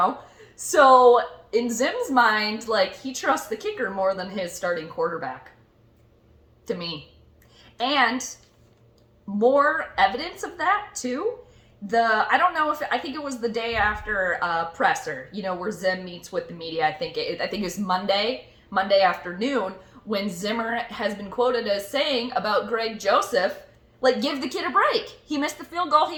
So in Zim's mind, he trusts the kicker more than his starting quarterback, to me. And more evidence of that, too. I think it was the day after presser, where Zim meets with the media. I think it was Monday afternoon, when Zimmer has been quoted as saying about Greg Joseph, give the kid a break. He missed the field goal.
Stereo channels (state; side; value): identical; both; correlation 1.00